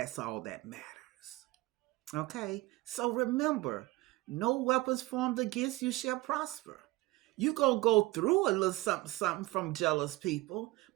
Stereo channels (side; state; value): left; quieter; 20.1 dB